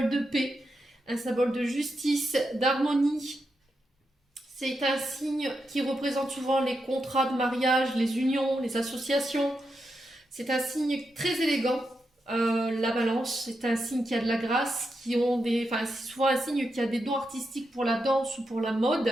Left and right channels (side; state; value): both; normal; correlation 0.85